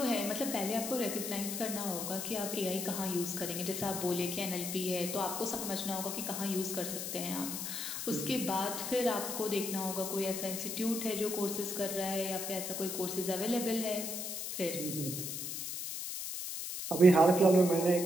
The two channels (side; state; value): left; noise; hiss, 5 dB below the sound